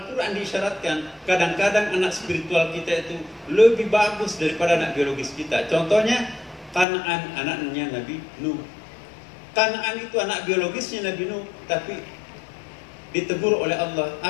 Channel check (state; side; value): drops out; right; at 6.9 s